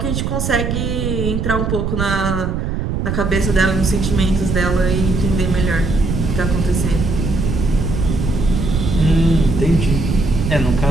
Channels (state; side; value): noise; right; rumble, 1 dB below the sound